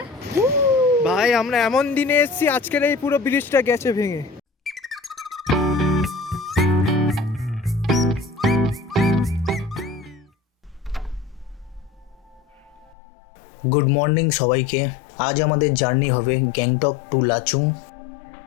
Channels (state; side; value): drops out; right; at 12.9 s